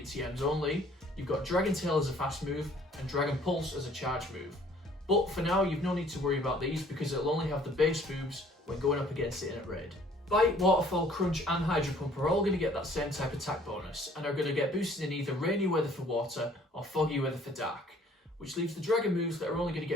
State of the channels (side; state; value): both; normal; correlation 0.57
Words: TMs only. You've got Dragon Tail as a fast move, and Dragon Pulse as a charge move. But for now, you've no need to worry about these because it'll only have the base moves when going up against it in a raid. Bite, Waterfall, Crunch and Hydro Pump are all going to get that same type attack bonus and are going to get boosted in either rainy weather for water or foggy weather for dark, which leaves the Dragon moves that are only going to